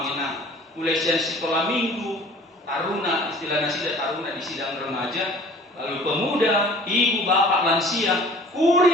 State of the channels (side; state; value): both; normal; correlation 0.48